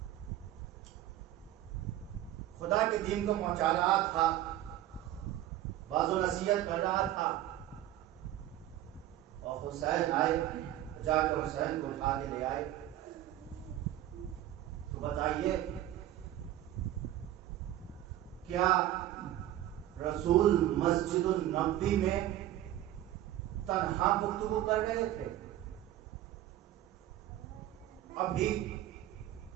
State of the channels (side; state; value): left; quieter; 13.4 dB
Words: خدا کے دین کو پہنچا رہا تھا، باز و نصیحت کر رہا تھا، اور حسین آئے، جا کر حسین کو اٹھا کے لے آئے، تو بتائیے کیا رسول مسجد النبوی میں تنہا گفتگو کر رہے تھے؟ ابھی